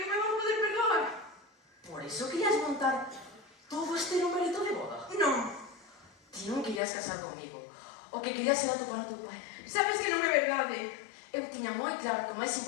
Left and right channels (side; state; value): right; drops out; at 6.8 s